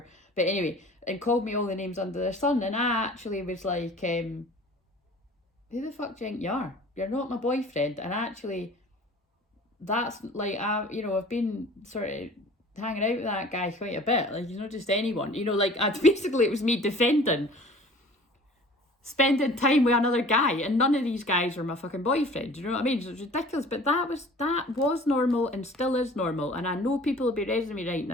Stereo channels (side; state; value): both; normal; correlation 0.46